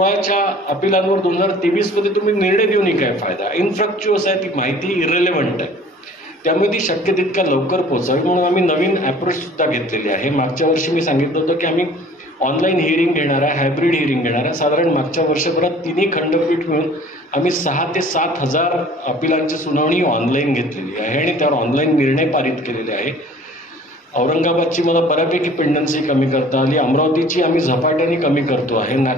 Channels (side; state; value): both; normal; correlation 0.50